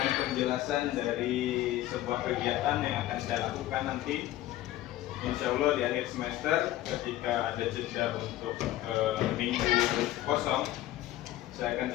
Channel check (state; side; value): quieter; right; 14.8 dB